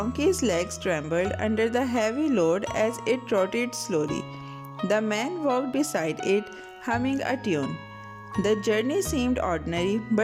legs trembled under the heavy load as it trotted slowly. The man walked beside it, humming a tune. The journey seemed ordinary,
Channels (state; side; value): identical; both; correlation 1.00